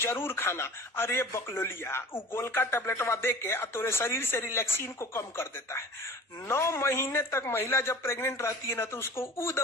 खाना। अरे बकलोलिया, वो गोल का टैबलेटवा दे के तोरे शरीर से रिलैक्सिन को कम कर देता है। 9 महीने तक महिला जब प्रेग्नेंट रहती है ना तो उसको वो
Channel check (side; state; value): both; normal; correlation 0.41